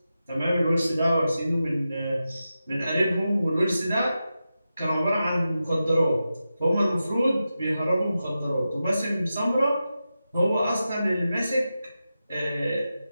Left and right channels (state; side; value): inverted; both; correlation -0.91